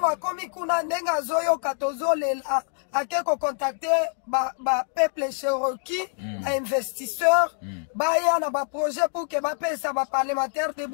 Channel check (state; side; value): silent; right; 57 dB below the other